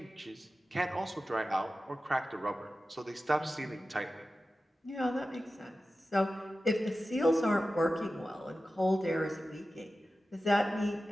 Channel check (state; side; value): normal; both; correlation 0.94